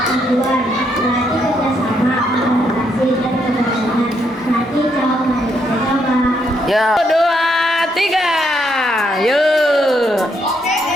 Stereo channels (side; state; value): both; normal; correlation 0.75